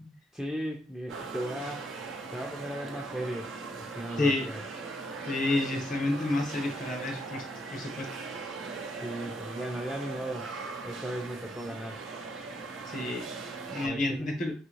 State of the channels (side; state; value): both; normal; correlation 0.75